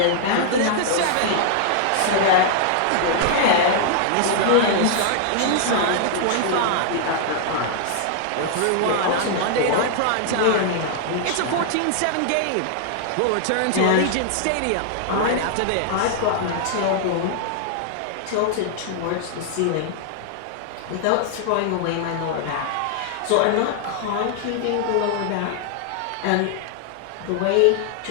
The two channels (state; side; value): different; both; correlation -0.01